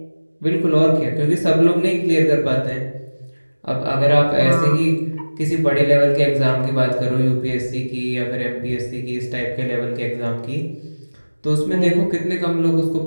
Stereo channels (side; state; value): both; inverted; correlation -1.00